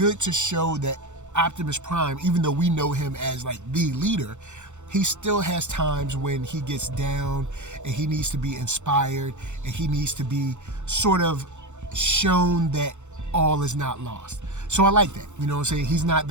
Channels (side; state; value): left; late; 0.84 ms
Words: to show that Optimus Prime, even though we know him as like the leader, he still has times when he gets down and he needs to be inspired and he needs to be sort of shown that all is not lost. So I like that. You know what I'm saying? He's not